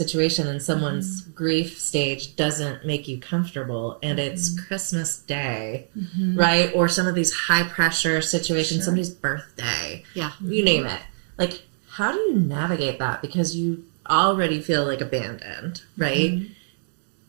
and someone's grief stage doesn't make you comfortable, and it's Christmas Day, right? Or some of these high pressure situations, somebody's birthday, you name it. Like, how do you navigate that? Because you already feel like abandoned, right?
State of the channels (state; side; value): silent; left; digital silence